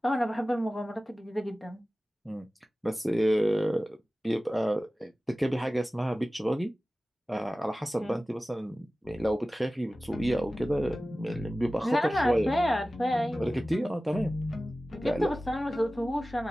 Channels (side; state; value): both; normal; correlation 0.96